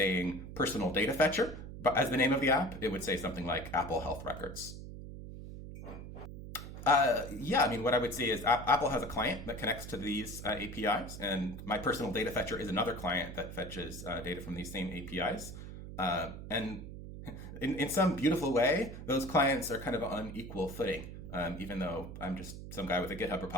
personal data fetcher, but as the name of the app, it would say something like Apple Health Records. Yeah, I mean, what I would say is Apple has a client that connects to these APIs, and my personal data fetcher is another client that fetches data from these same APIs. And in some beautiful way, those clients are kind of on equal footing, even though I'm just some guy with a GitHub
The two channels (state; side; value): noise; right; hum, 11 dB below the sound